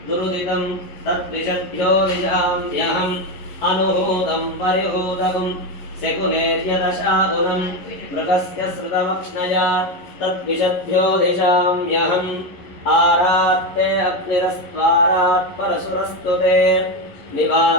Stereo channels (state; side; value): late; right; 11 ms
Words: दुरुदितं तद्विषभ्यो दिशाम्यहम् अनुहूतं परिहूतकं शकुनेर्यदशागुणं मृगस्य श्रुतमक्ष्णया तद्विषभ्यो दिशाम्यहम् आरात्ते अग्निरस्त्वारात् परशुरस्तु ते